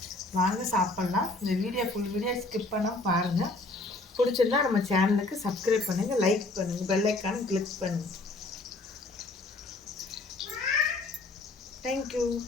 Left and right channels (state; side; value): quieter; right; 3.1 dB